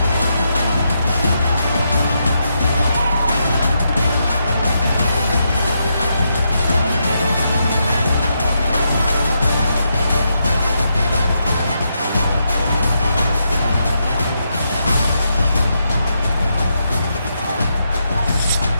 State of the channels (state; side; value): inverted; both; correlation -0.82